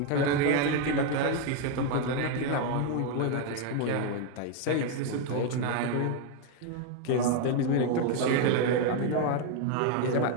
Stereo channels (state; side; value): different; both; correlation 0.01